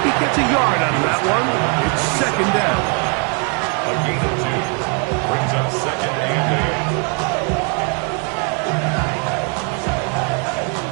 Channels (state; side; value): quieter; left; 35.9 dB